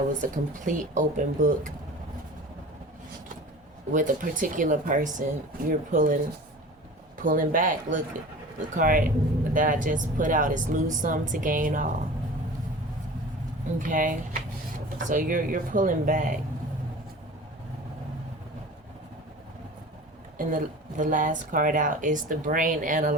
was a complete open book with a particular person. You're pulling back. Look, the card that I just put out is lose some to gain all. Okay, so you're pulling back. And the last card out is the brain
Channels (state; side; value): normal; both; correlation 0.38